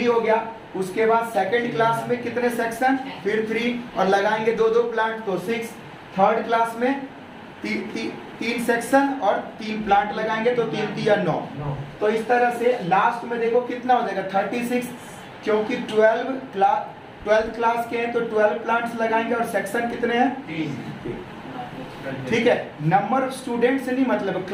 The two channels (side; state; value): both; identical; correlation 1.00